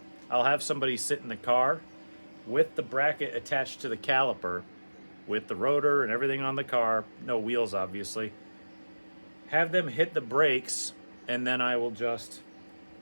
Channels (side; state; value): both; inverted; correlation -1.00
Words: I'll have somebody sit in the car with the bracket attached to the caliper, with the rotor and everything on the car, no wheels obviously, have them hit the brakes, and then I will just